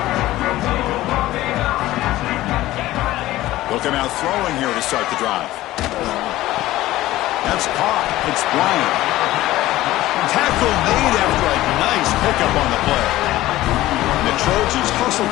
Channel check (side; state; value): right; quieter; 16.1 dB